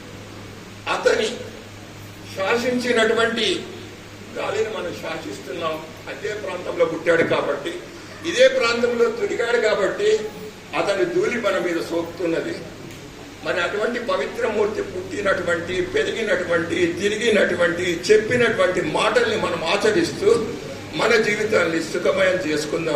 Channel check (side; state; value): both; identical; correlation 1.00